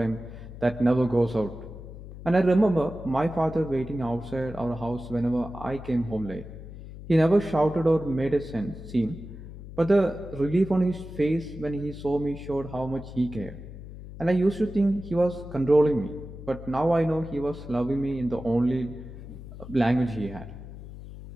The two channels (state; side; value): noise; left; hum, 13 dB below the sound